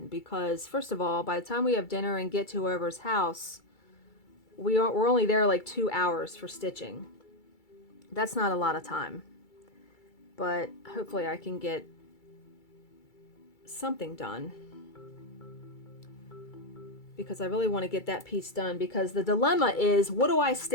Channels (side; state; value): right; late; 2.3 ms